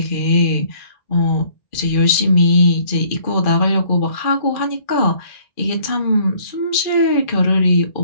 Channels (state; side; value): late; right; 2.4 ms